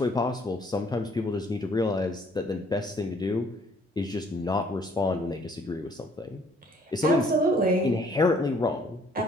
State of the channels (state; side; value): normal; both; correlation 0.61